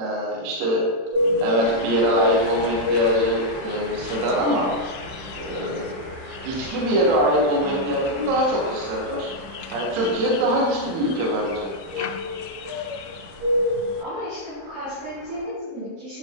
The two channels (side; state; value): left; late; 31 ms